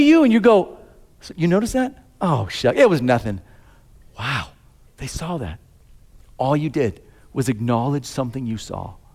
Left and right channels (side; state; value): both; identical; correlation 1.00